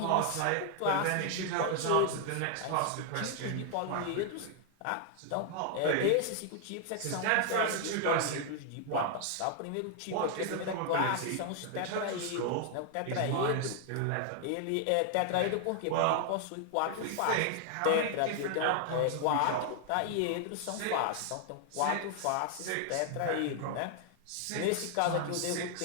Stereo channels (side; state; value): both; different; correlation 0.00